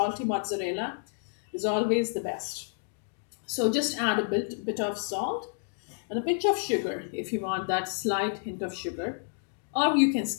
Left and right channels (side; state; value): right; silent; digital silence